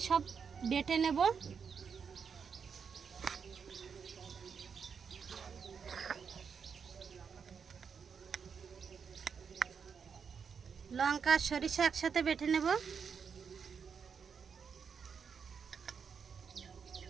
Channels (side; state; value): left; quieter; 6.4 dB